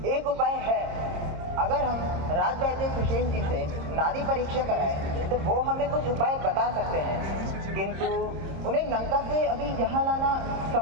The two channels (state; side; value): late; left; 26 ms